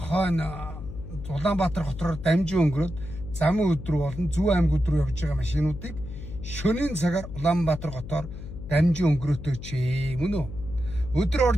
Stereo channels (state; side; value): noise; left; hum, 11 dB below the sound